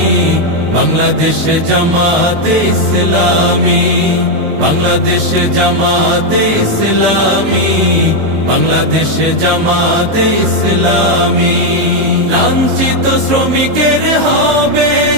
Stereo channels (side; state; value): left; late; 19 ms